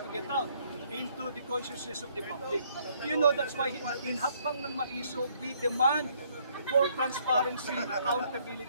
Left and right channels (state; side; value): inverted; both; correlation -0.67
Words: to get out into the consciousness of the public. You know, that's why in Hakbang ng Maiso, we demand for transparency,